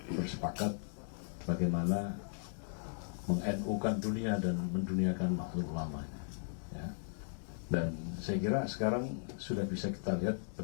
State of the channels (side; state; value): right; silent; digital silence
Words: bersepakat bagaimana meng-NU-kan dunia dan menduniakan makhluk ulama. Ya. Dan saya kira sekarang sudah bisa kita lihat